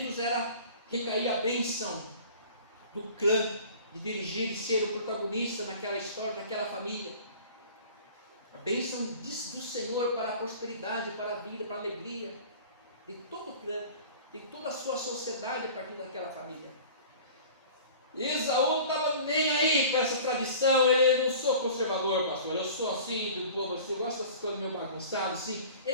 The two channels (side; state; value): both; inverted; correlation -0.43